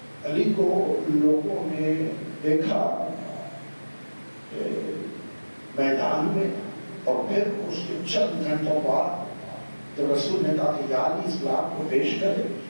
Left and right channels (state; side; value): inverted; both; correlation -1.00